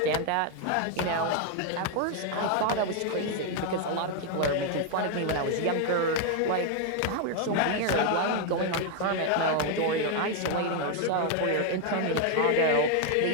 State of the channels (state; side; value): different; both; correlation 0.00